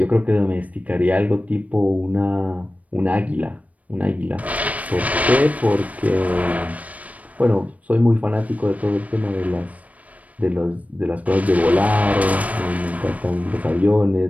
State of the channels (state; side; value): late; left; 0.069 ms